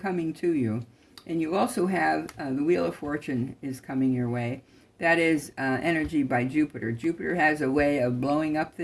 to you. And you also have the Wheel of Fortune is coming your way. That is energy by Jupiter. Jupiter has a way of blowing up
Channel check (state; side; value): identical; both; correlation 1.00